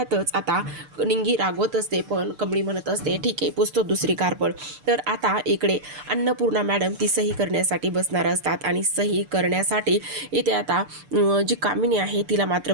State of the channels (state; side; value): late; left; 6.8 ms